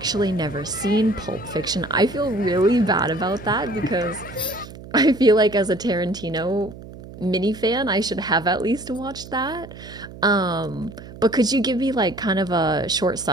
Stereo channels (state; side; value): noise; right; hum, 15 dB below the sound